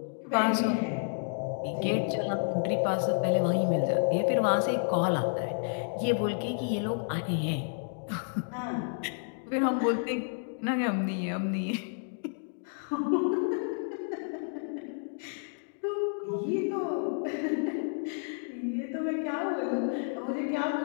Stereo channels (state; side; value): silent; right; digital silence